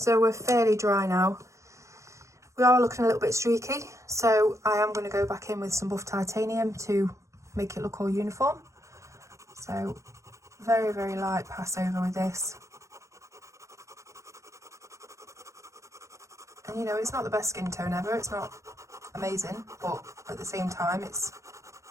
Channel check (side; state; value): left; late; 0.15 ms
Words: we're fairly dry now. We are looking a little bit streaky, so I am going to go back in with some buff titanium to make it look all uniform. So very, very light pass over with this. And you know, it's not the best skin tone ever, it's not amazing, but at the same time it's